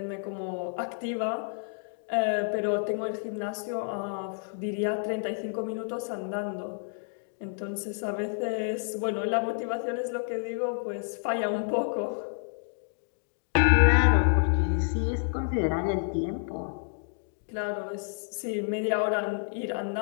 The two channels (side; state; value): right; silent; digital silence